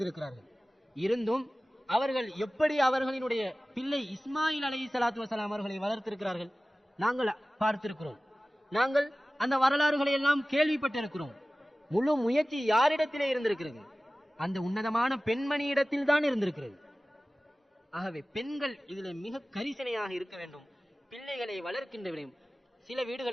இருந்தும் அவர்கள் எப்படி அவர்களினுடைய பிள்ளை இஸ்மாயில் அலைஹிஸ்ஸலாத்து வஸலாம் அவர்களை வளர்த்திருக்கிறார்கள் நாங்கள் பார்த்திருக்கிறோம். நாங்கள் அந்த வரலாறுகளை எல்லாம் கேள்விப்பட்டிருக்கிறோம். முழு முயற்சி யாரிடத்திலே இருந்திருக்கிறது? அந்த உன்னதமான பெண்மணி இடத்தில் தான் இருந்திருக்கிறது. ஆகவே பெண்கள் இதில் மிக கரிசனையாக இருக்க வேண்டும். பிள்ளைகளை வளர்க்கின்ற விடயம். சில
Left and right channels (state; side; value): normal; both; correlation 0.97